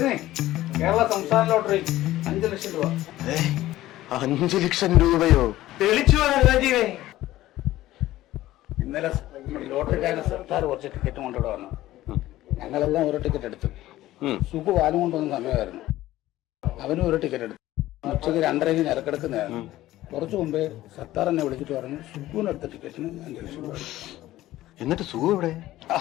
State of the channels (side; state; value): right; quieter; 15.4 dB